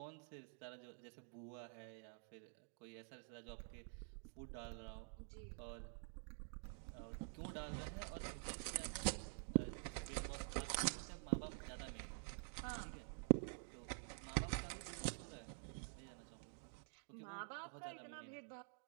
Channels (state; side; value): silent; left; digital silence